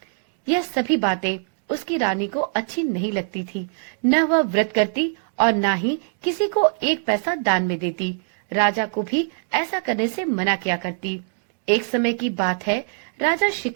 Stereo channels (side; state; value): left; silent; digital silence